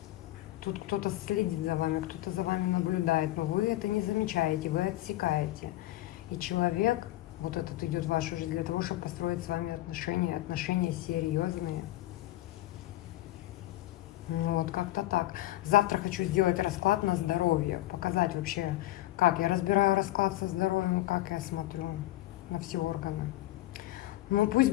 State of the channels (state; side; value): quieter; right; 16.2 dB